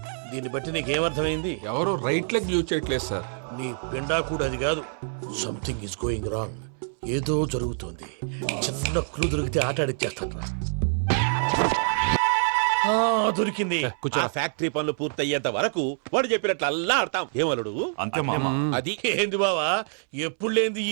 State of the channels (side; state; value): left; silent; 61 dB below the other